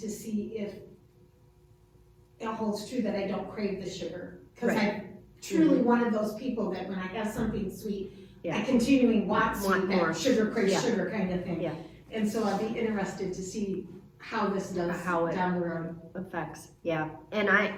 see if it holds true that I don't crave the sugar. Because Right. I'm truly one of those people that when I have something sweet, Yeah. I continually want Want sweet, more. that sugar craves Yeah. sugar kind of thing. Yeah. And so I'd be interested to see how this does How it down the road. Effects, yeah. And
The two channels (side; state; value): both; identical; correlation 1.00